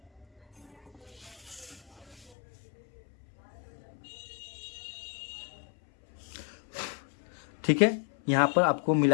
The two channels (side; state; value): right; drops out; at 2.3 s